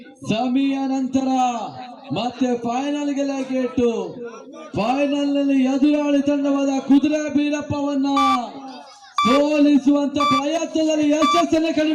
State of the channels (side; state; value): both; identical; correlation 1.00